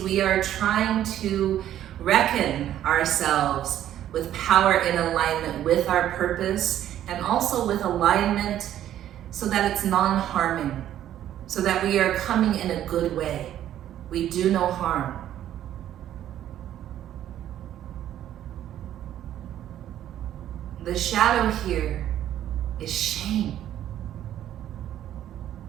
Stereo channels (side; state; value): left; quieter; 11.6 dB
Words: we are trying to reckon ourselves with power in alignment with our purpose and also with alignment so that it's non-harming, so that we are coming in a good way. We do no harm. The shadow here is shame.